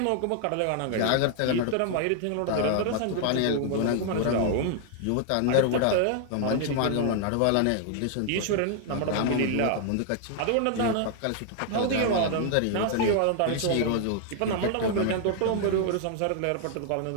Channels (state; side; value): different; both; correlation 0.00